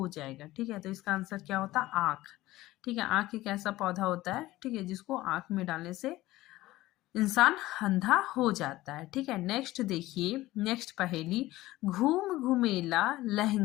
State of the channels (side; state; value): right; quieter; 17.2 dB